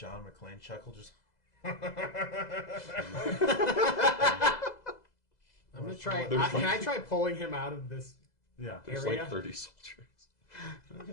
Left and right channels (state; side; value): late; right; 2.0 ms